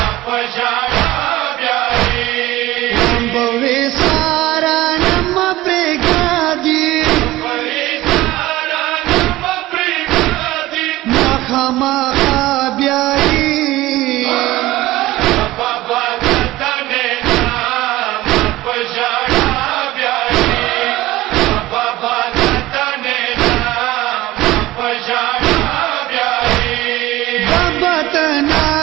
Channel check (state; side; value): quieter; left; 17.4 dB